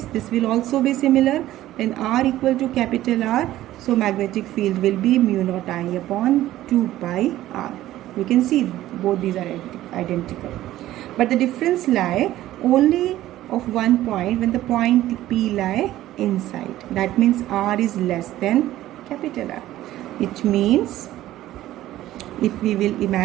this will also be similar. Then R equal to capital R, so magnetic field will be mu naught I upon 2 pi R. You can see both these are identical. But the difference lie only of one point, when the point P lie inside. That means R is less than capital R. It means if we will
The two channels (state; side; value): quieter; left; 14.5 dB